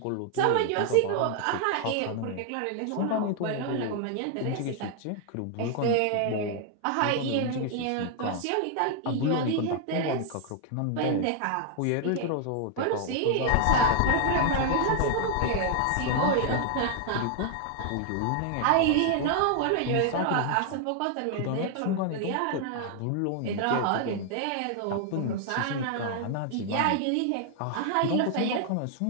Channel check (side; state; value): both; different; correlation 0.00